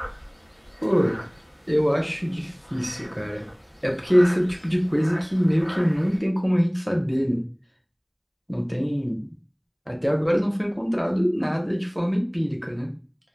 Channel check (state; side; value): identical; both; correlation 1.00